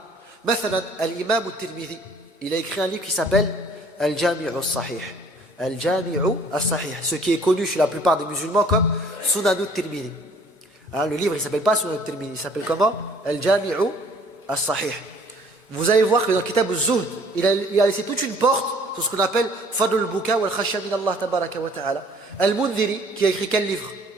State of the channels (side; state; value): both; normal; correlation 0.56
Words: Mathalan, al-imam al-Tirmidhi, il a écrit un livre qui s'appelle Al-Jami'u al-Sahih. Al-Jami'u al-Sahih, ce qui est connu chez la plupart des musulmans comme Sunan al-Tirmidhi. Hein, le livre, il ne s'appelle pas Sunan al-Tirmidhi, il s'appelle comment? Al-Jami'u al-Sahih. Vous allez voir que dans Kitab al-Zuhd, il a laissé toute une porte sur ce qu'on appelle Fadl al-Buka wal-Khashya min Allah tabaraka wa ta'ala. Al-Mundhiri, qui a écrit quel livre?